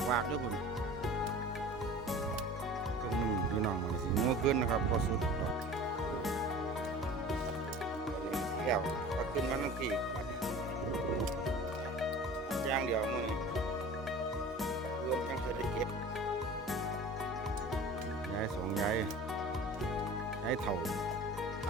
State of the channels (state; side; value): normal; both; correlation 0.40